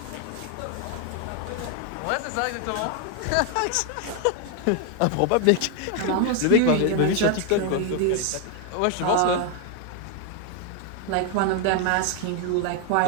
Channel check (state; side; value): different; both; correlation 0.01